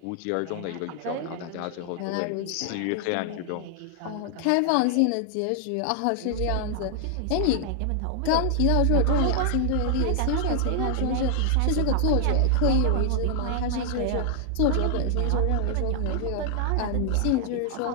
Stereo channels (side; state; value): both; different; correlation 0.00